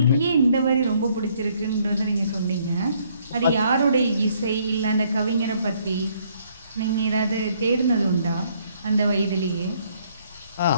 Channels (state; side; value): inverted; both; correlation -0.67